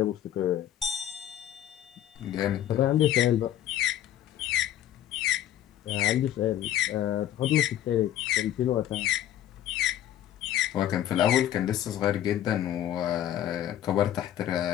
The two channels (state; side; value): quieter; right; 11.8 dB